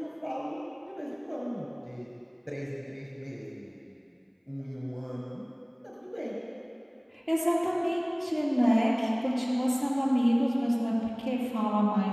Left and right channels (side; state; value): both; identical; correlation 1.00